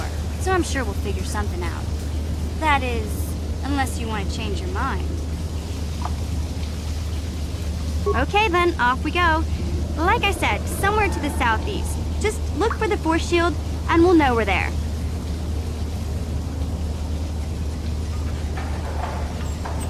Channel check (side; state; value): both; identical; correlation 1.00